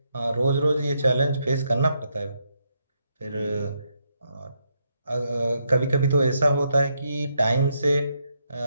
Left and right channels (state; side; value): inverted; both; correlation -0.79